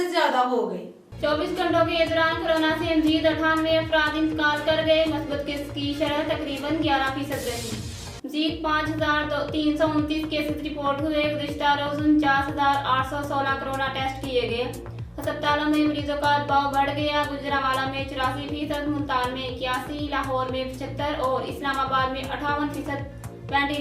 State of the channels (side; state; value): both; identical; correlation 1.00